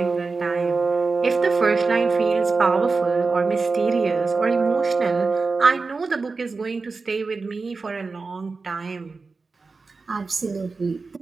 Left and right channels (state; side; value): quieter; left; 4.2 dB